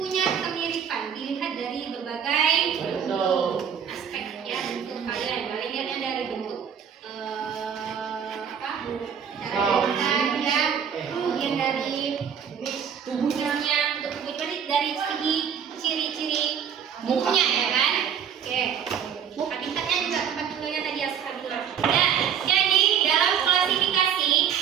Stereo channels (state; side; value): quieter; left; 8.0 dB